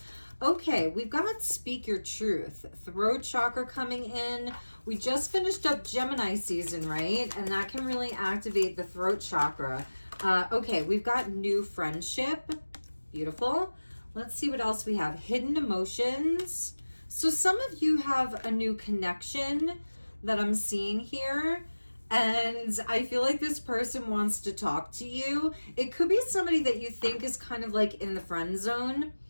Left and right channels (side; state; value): both; inverted; correlation -1.00